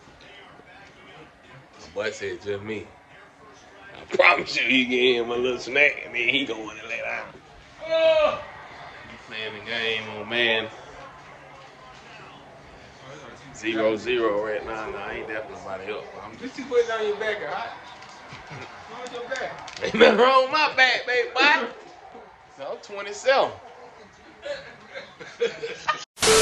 Boy said just me. I promise you, he get him a little snack and then he go in and lay down. Oh! You playing the game on man. 0-0 right now. No, I ain't definitely nobody else. I'm just putting it on your back, alright? On your back. Ain't nothing wrong with my back, baby boy. So I'm 27.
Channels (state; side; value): identical; both; correlation 1.00